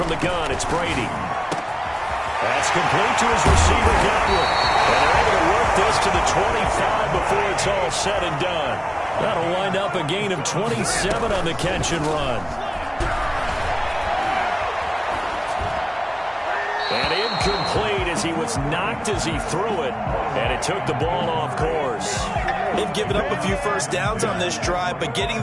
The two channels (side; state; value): both; identical; correlation 1.00